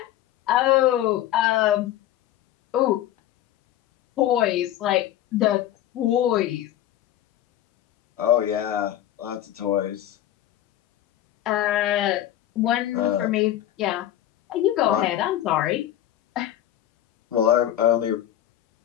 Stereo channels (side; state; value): right; quieter; 12.4 dB